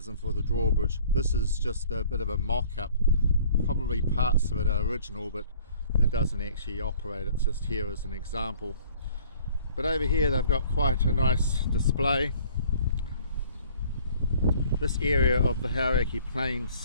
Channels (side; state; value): both; inverted; correlation -0.54